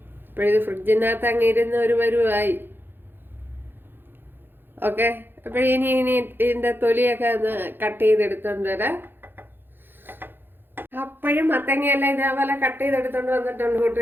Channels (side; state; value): left; late; 0.10 ms